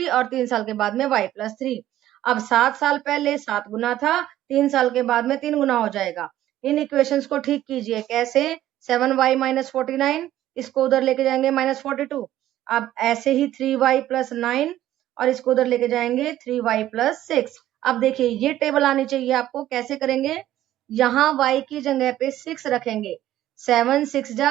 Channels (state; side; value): quieter; left; 13.3 dB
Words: और 3 साल के बाद में y प्लस 3। अब 7 साल पहले 7 गुना था, 3 साल के बाद में 3 गुना हो जाएगा। इन इक्वेशंस को ठीक कीजिए। कैसे? 7y माइनस 49, इसको उधर लेके जाएंगे -42। अब ऐसे ही 3y प्लस 9 और इसको उधर लेके जाएंगे 3y प्लस 6। अब देखिए ये टेबल आनी चाहिए आपको। कैसे करेंगे? यहाँ y की जगह पे 6 रखेंगे। 7 6